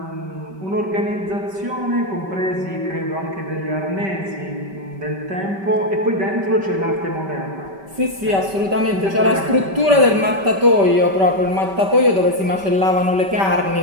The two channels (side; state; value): left; late; 5.2 ms